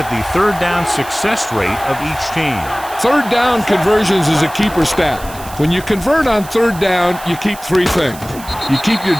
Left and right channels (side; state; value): right; noise; hiss, 17 dB below the sound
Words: the third down success rate of each team. Third down conversions is a keeper stat. When you convert on third down, you keep three things. You keep your